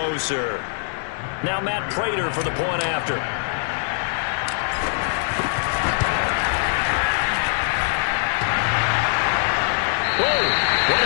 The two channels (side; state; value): right; silent; 64 dB below the other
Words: Now Matt Prater for the point after. Whoa, what